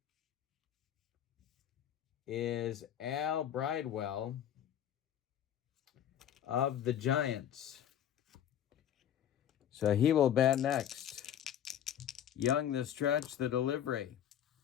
is Al Bridewell of the Giants. So he will bat next. Young the stretch, the delivery.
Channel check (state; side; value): quieter; right; 10.2 dB